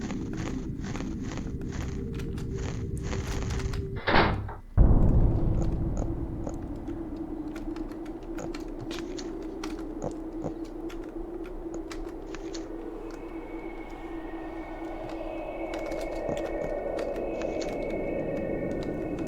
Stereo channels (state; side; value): identical; both; correlation 1.00